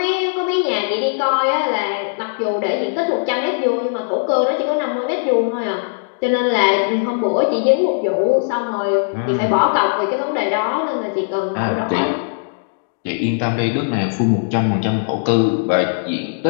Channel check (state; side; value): silent; right; digital silence